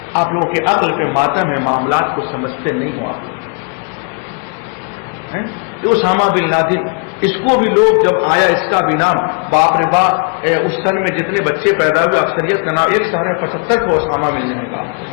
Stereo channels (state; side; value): quieter; right; 38.7 dB